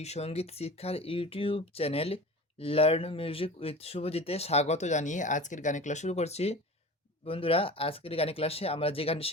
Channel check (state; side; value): normal; both; correlation 0.35